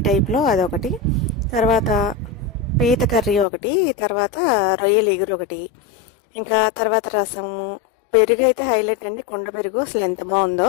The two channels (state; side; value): drops out; right; at 3.5 s